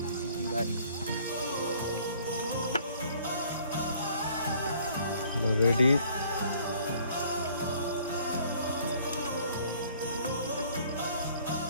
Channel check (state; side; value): inverted; both; correlation -0.58